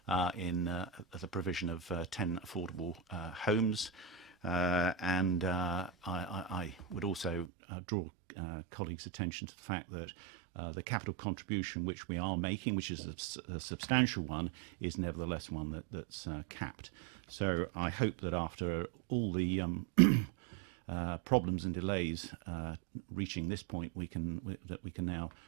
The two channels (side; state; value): left; drops out; at 7.5 s